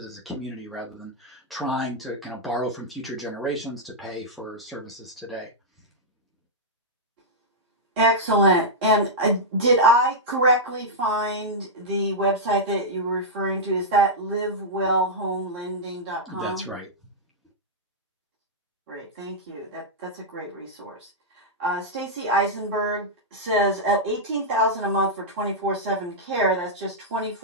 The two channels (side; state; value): both; normal; correlation -0.08